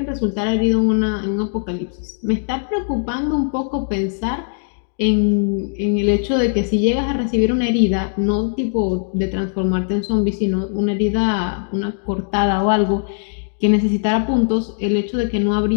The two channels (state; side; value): silent; right; digital silence